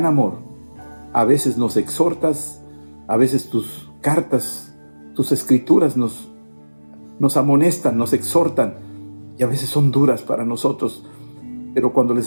amor a veces nos exhortas, a veces tus cartas, tus escrituras nos amonestan, nos exhortan, y a veces son duras para nosotros, pero cuando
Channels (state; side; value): inverted; both; correlation -1.00